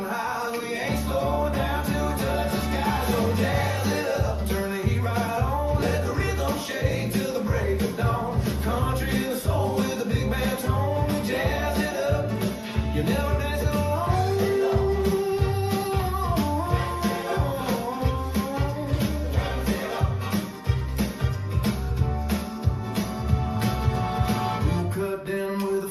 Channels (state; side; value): identical; both; correlation 1.00